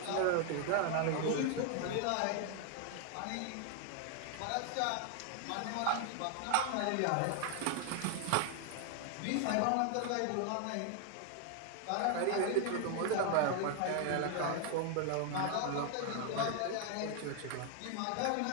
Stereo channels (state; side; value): different; both; correlation 0.00